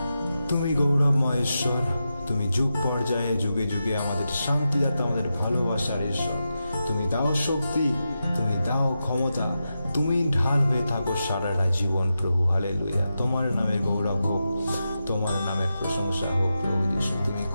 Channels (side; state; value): both; inverted; correlation -0.89